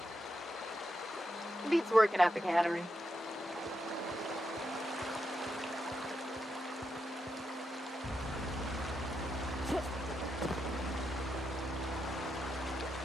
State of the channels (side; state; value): both; normal; correlation 0.85